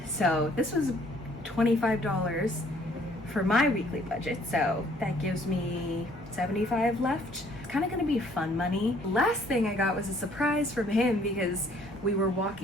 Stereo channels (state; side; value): normal; both; correlation 0.61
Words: So this was $25 for my weekly budget, so that gives me $75 left. It's kind of gonna be fun money. Last thing I got was a surprise from him because we were